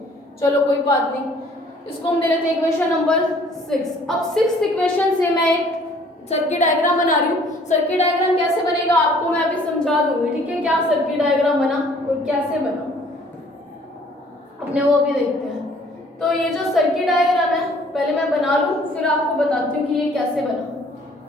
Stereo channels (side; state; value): both; normal; correlation 0.57